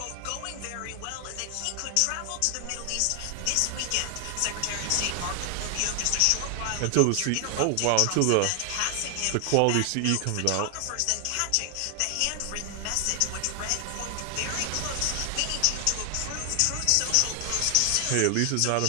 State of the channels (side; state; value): both; different; correlation 0.00